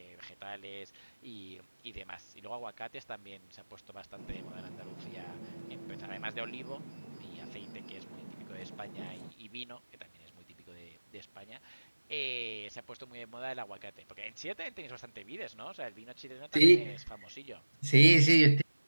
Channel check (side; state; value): both; inverted; correlation -1.00